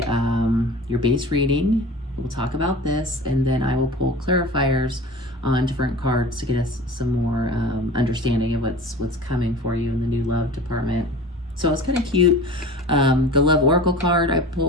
your base reading. We'll talk about this, and then I will pull clarifiers on different cards to get us some more understanding of what's coming for you in the new love department. So it's kind of cute. The love oracle card I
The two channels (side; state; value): both; normal; correlation 0.38